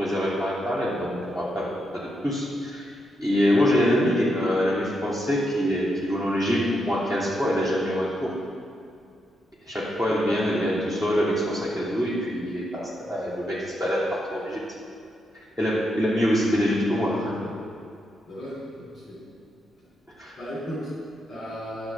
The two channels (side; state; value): both; normal; correlation 0.82